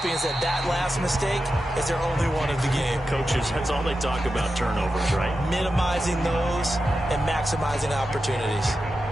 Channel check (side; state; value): both; normal; correlation 0.90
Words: is that that last mistake is their only one of the game. Coaches, that's all they talk about, turnovers, right? Minimizing those and maximizing opportunities.